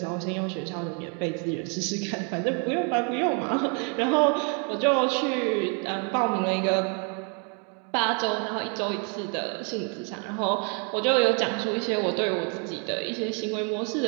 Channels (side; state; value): left; quieter; 38.0 dB